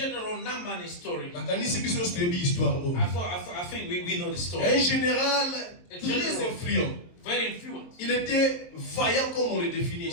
Naaman story. I think we know the story. Un général très influent. Very influent. Il était vaillant comme on le définit. He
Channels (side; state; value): right; late; 23 ms